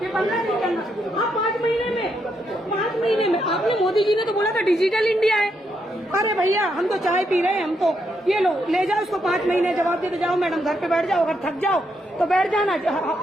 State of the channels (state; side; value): normal; both; correlation 0.79